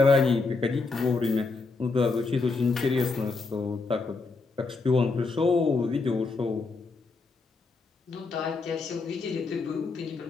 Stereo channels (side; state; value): right; quieter; 4.0 dB